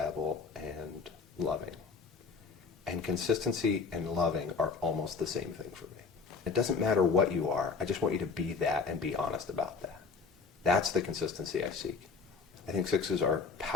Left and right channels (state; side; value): quieter; right; 5.1 dB